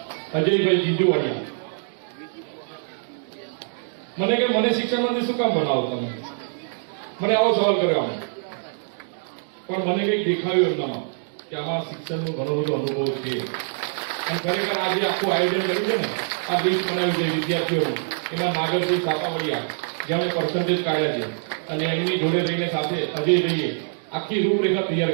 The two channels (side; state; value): left; silent; digital silence